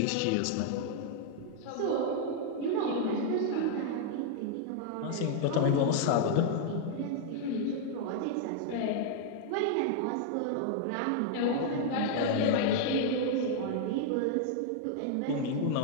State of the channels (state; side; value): different; both; correlation -0.01